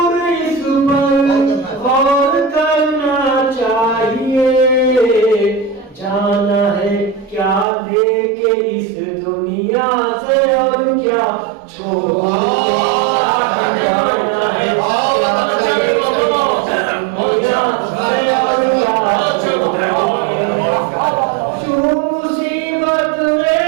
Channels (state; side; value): drops out; left; at 7.7 s